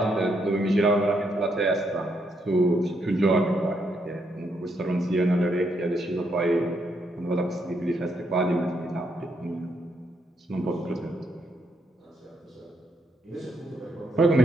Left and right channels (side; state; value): both; normal; correlation 0.76